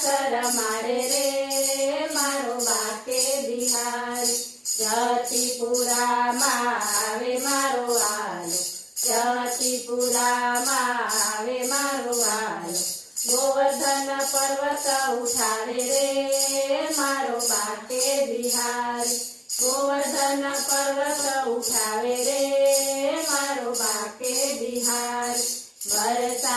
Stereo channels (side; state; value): both; identical; correlation 1.00